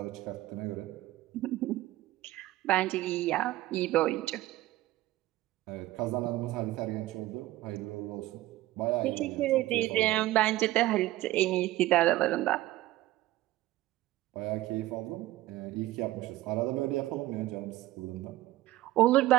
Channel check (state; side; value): quieter; left; 16.4 dB